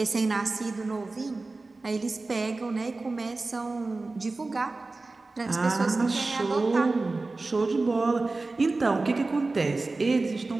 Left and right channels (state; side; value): quieter; left; 3.4 dB